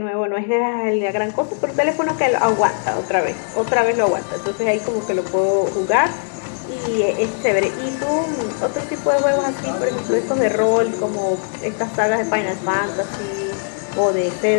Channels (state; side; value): silent; right; 66 dB below the other